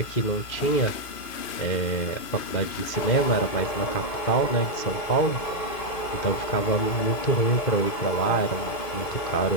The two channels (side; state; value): right; late; 2.5 ms